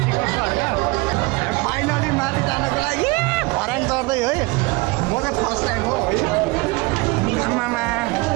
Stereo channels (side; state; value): left; quieter; 24.7 dB